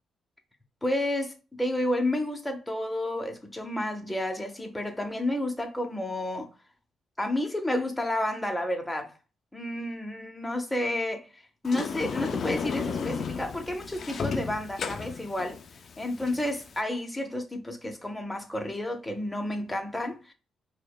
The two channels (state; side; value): normal; both; correlation 0.86